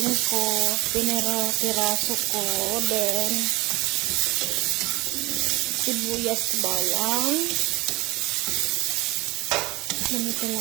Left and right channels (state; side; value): quieter; left; 22.0 dB